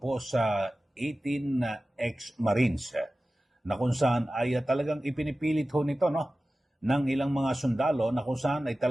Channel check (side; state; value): both; normal; correlation 0.96